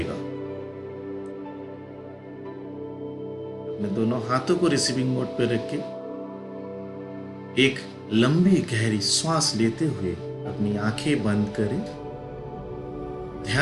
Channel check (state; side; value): identical; both; correlation 1.00